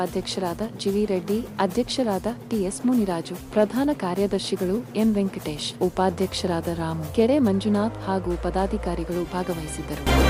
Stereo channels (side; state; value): both; identical; correlation 1.00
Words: ಜಿವಿ ರೆಡ್ಡಿ, ಅಧ್ಯಕ್ಷರಾದ ಟಿಎಸ್ ಮುನಿರಾಜು, ಪ್ರಧಾನ ಕಾರ್ಯದರ್ಶಿಗಳು ಎನ್ ವೆಂಕಟೇಶ್, ಉಪಾಧ್ಯಕ್ಷರಾದ ರಾಮು, ಕೆರೆ ಮಂಜುನಾಥ್ ಹಾಗೂ ಪದಾಧಿಕಾರಿಗಳು ಭಾಗವಹಿಸಿದ್ದರು.